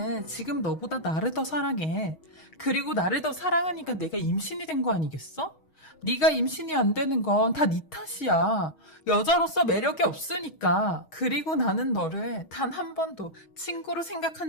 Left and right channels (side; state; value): right; late; 6.3 ms